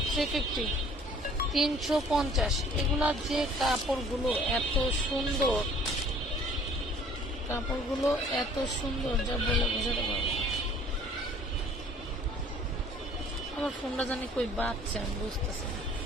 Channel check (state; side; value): normal; both; correlation 0.54